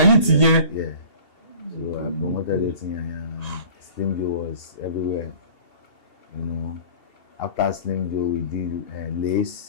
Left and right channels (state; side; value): late; right; 2.8 ms